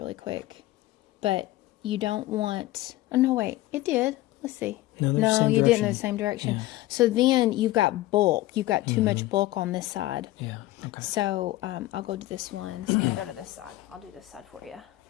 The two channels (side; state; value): right; quieter; 16.8 dB